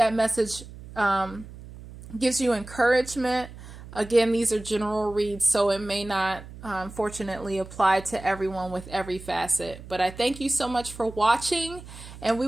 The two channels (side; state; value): right; noise; hum, 15 dB below the sound